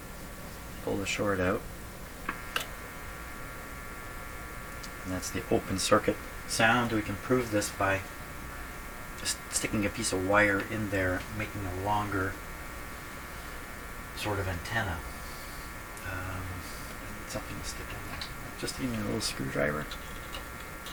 pull the short out, and that's the open circuit sound. We can prove this by just sticking a piece of wire in there, making a longer sort of antenna. I need something to stick in there. Just give me a little screwdriver.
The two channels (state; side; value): identical; both; correlation 1.00